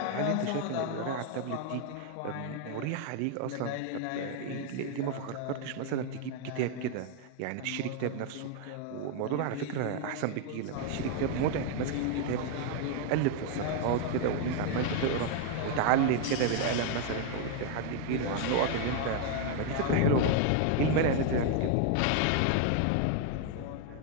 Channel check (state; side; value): different; both; correlation 0.00